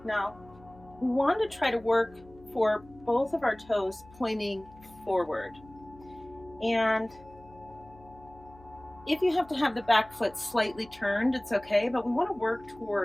Now, we want to try to work for both of our toes pointing forward. And if you have to have the back foot slightly turned, it's okay, but we want to work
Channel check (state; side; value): noise; left; hum, 23 dB below the sound